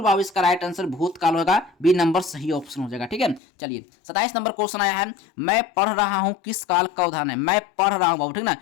बाबू इसका राइट आंसर भूतकाल होगा, बी नंबर सही ऑप्शन हो जाएगा, ठीक है। चलिए 27 नंबर क्वेश्चन आया है, मैं पढ़ रहा हूँ, किस काल का उदाहरण है? मैं पढ़ रहा हूँ बाबू, ठीक ना,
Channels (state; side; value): drops out; right; at 3.4 s